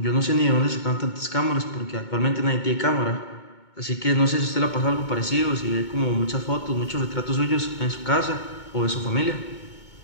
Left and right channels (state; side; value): late; right; 2.2 ms